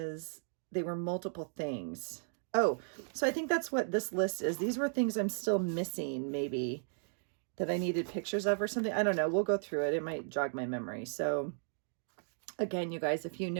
they were multiple things. Oh, so I think that's what this list is. These were things I'm still missing, maybe, that I needed pictures of or something. I don't know. We'll go through it. It might jog my memory. So again, you guys, if you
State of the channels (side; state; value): left; silent; digital silence